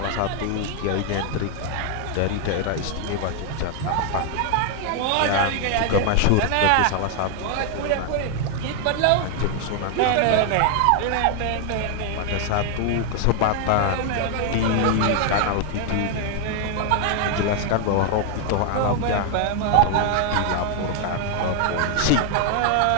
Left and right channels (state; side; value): different; both; correlation 0.00